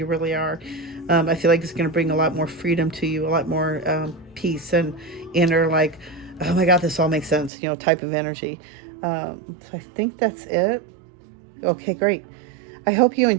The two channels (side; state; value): left; drops out; at 7.5 s